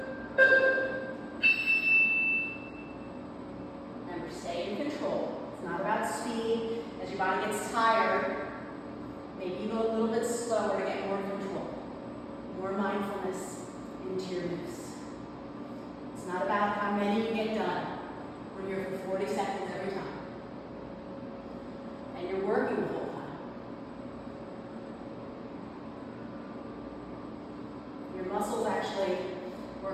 Remember, stay in control. It's not about speed. As your body gets tired, maybe you go a little bit slower to get more control. More mindfulness into your moves. It's not about how many you get done. We're here for 40 seconds every time. And you're working the whole time. Your muscles actually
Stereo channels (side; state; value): both; identical; correlation 1.00